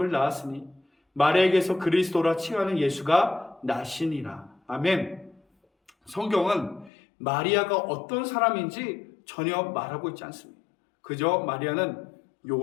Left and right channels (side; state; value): right; drops out; at 6.9 s